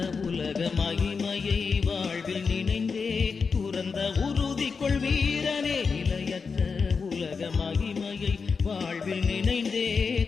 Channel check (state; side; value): quieter; right; 5.2 dB